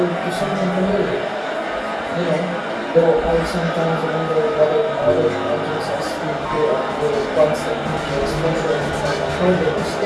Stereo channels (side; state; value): both; identical; correlation 1.00